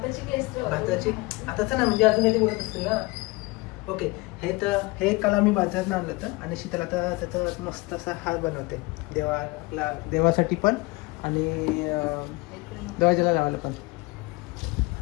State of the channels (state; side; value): quieter; right; 24.0 dB